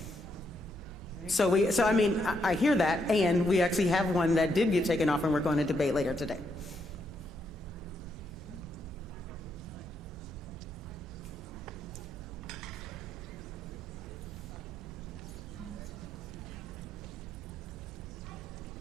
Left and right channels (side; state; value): both; normal; correlation 0.78